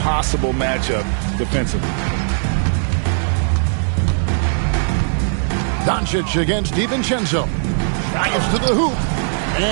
matchup defensively. Doncic against DiVincenzo. Drives to the hoop.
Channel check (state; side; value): silent; left; 64 dB below the other